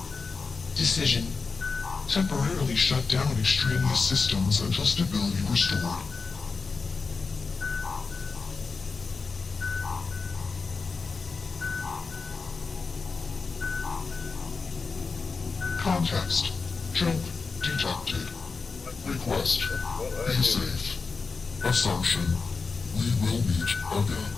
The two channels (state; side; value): quieter; right; 4.6 dB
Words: Decision: temporarily shut down extraneous systems until stability restored. Context: jump detected. Request: be safe. Assumption: we will meet again.